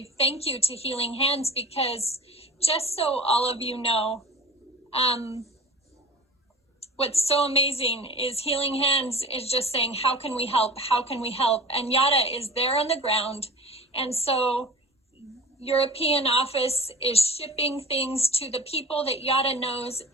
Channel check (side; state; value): both; normal; correlation 0.38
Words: thank you to Healing Hands, because just so all of you know, what's so amazing is Healing Hands is just saying, how can we help? How can we help? And Yara is there on the ground. And so European office is shipping things to the people that Yara knows